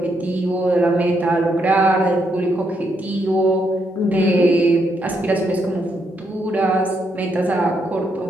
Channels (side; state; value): both; normal; correlation 0.77